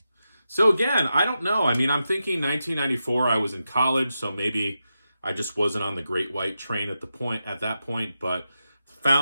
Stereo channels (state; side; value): inverted; both; correlation -0.89